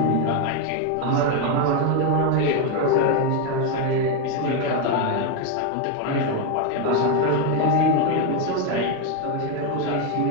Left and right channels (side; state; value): both; different; correlation 0.02